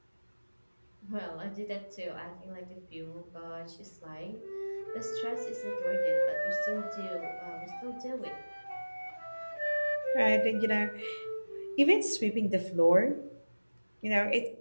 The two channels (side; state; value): both; inverted; correlation -1.00